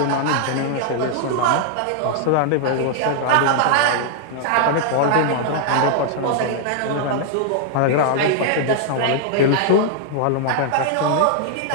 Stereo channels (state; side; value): different; both; correlation -0.01